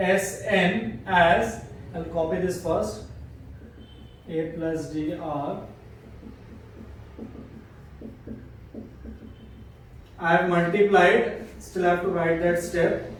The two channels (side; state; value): both; identical; correlation 1.00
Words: as, I'll copy this first, A plus D R. I have multiplied, still have to write that step.